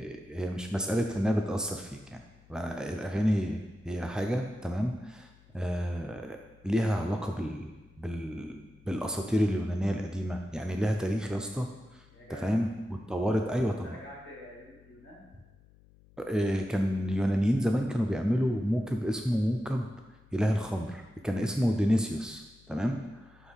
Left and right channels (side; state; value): left; noise; hum, 27 dB below the sound